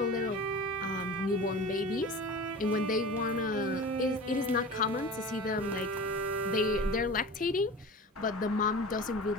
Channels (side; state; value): both; normal; correlation 0.34